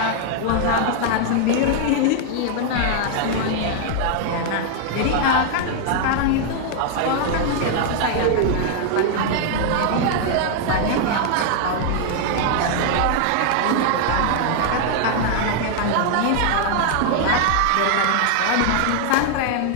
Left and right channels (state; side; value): different; both; correlation 0.00